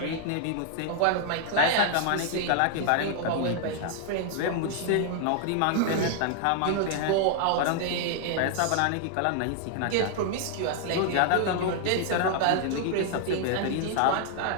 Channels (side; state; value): both; different; correlation 0.00